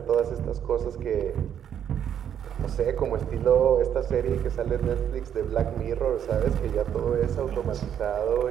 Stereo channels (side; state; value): left; quieter; 9.2 dB